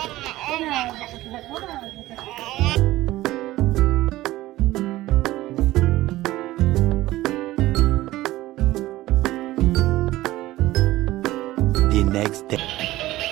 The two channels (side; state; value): left; quieter; 16.8 dB